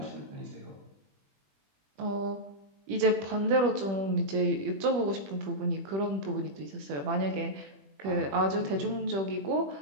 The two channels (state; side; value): late; left; 21 ms